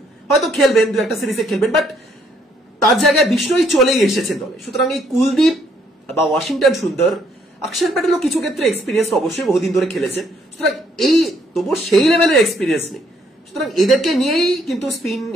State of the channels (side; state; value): both; normal; correlation 0.69